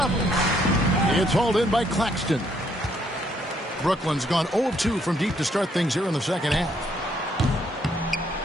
It's hauled in by Claxton. Brooklyn's gone 0-2 from deep to start things here in the second half.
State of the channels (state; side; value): normal; both; correlation 0.70